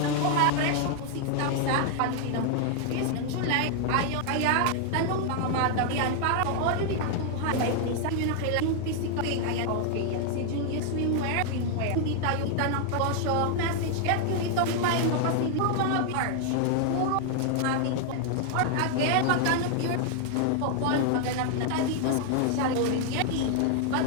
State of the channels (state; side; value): different; both; correlation 0.00